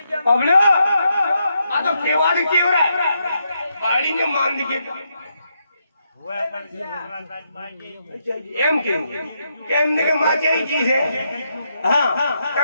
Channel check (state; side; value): inverted; both; correlation -0.80